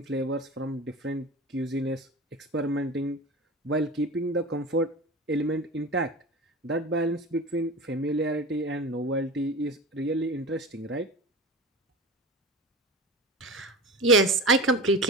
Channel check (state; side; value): normal; both; correlation 0.30